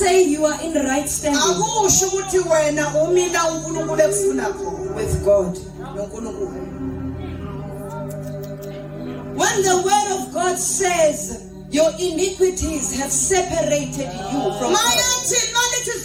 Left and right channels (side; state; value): both; identical; correlation 1.00